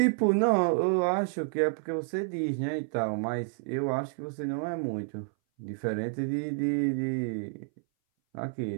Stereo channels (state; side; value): silent; left; 58 dB below the other